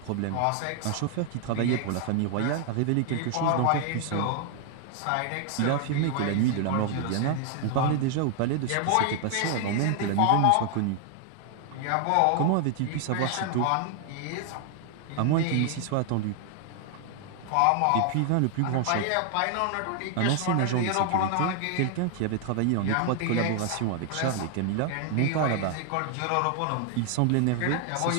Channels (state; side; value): different; both; correlation 0.00